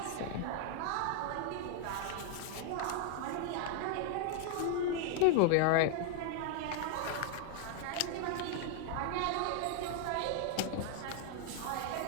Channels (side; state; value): both; different; correlation 0.00